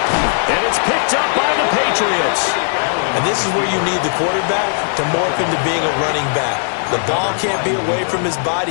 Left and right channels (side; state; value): right; silent; digital silence